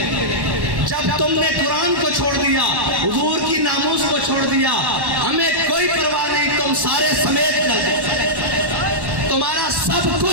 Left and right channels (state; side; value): late; left; 1.1 ms